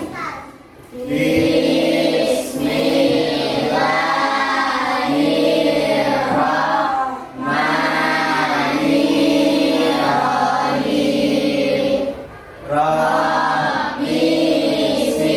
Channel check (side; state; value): both; identical; correlation 1.00